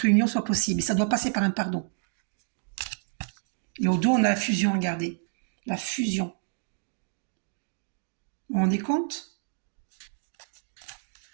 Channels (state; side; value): silent; left; digital silence